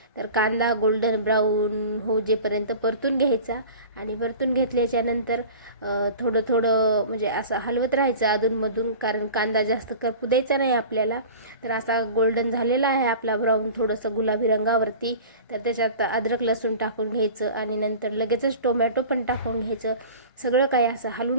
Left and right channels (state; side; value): inverted; both; correlation -0.39